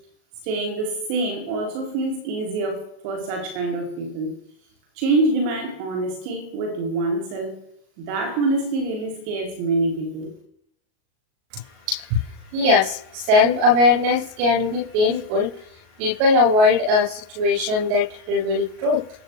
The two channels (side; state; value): left; late; 38 ms